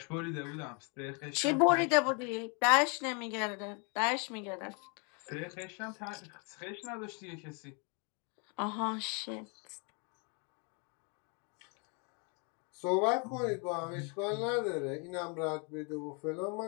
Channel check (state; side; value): quieter; right; 35.3 dB